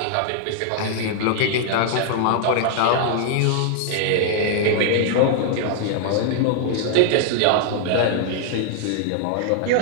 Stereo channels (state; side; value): different; both; correlation 0.00